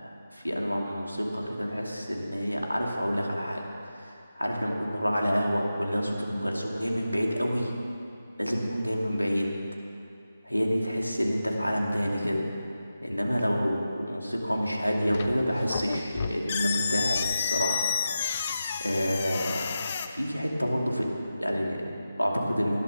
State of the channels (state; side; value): inverted; both; correlation -0.92